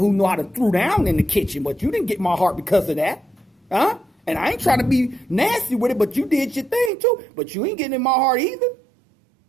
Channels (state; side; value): drops out; left; at 6.9 s